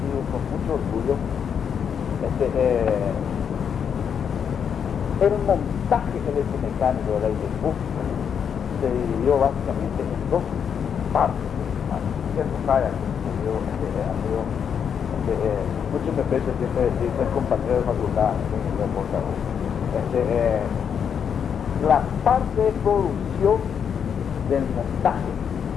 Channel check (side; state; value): right; quieter; 7.6 dB